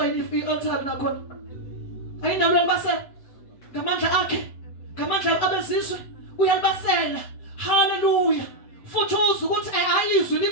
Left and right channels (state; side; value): late; right; 7.7 ms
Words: i-altar nakhona. Ayinawo uyalibasela ngamandla akhe, ngamandla abezizwe uyalibasela. Hallelujah. Futhi uzwe ukuthi ayizwi